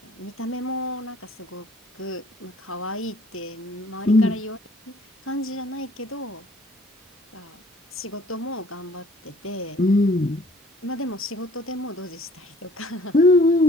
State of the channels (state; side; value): normal; both; correlation 0.56